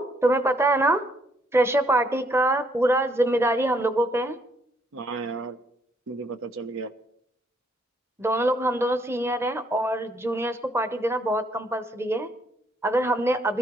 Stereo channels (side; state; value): both; normal; correlation 0.70